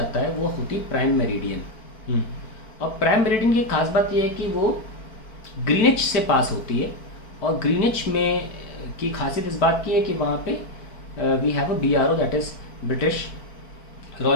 है वो होती प्राइम मेरिडियन। और प्राइम मेरिडियन की खास बात ये है कि वो ग्रीनिच से पास होती है, और ग्रीनिच में की खासियत इस बात की है कि वहाँ पे we have a BRO, that is British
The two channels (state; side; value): late; right; 4.5 ms